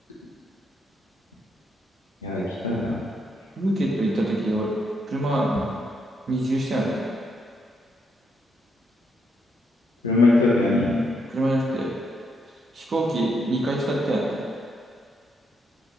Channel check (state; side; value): normal; both; correlation 0.78